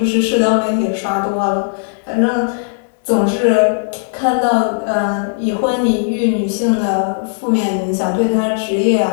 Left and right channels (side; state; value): right; silent; 63 dB below the other